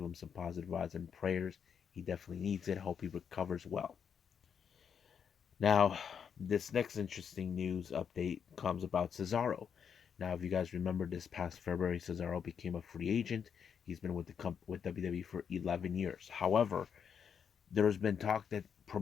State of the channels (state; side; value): quieter; right; 7.3 dB